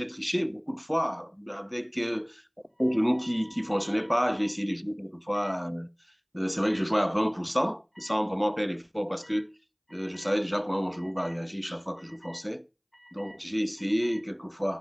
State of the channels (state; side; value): identical; both; correlation 1.00